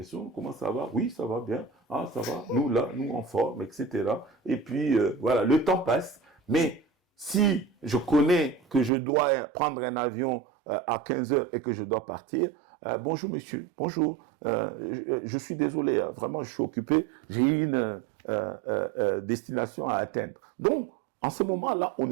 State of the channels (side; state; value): left; drops out; at 8.9 s